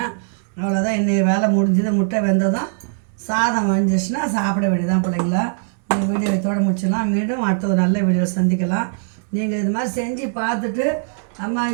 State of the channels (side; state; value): left; silent; digital silence